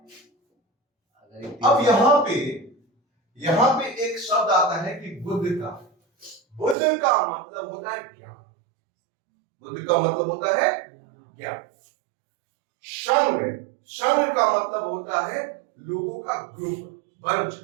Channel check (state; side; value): drops out; left; at 6.8 s